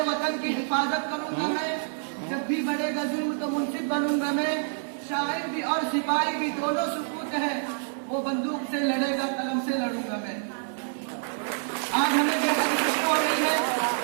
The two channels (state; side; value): silent; left; 60 dB below the other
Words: वतन की हिफाजत करूंगा मैं, जब भी बढ़ेगा जुल्म तो मुंसिफ बनूंगा मैं। शायर भी और सिपाही भी दोनों सुकूत है, वो बंदूक से लड़ेगा कलम से लड़ूंगा मैं। आज हमें बेहद खुशी हो रही है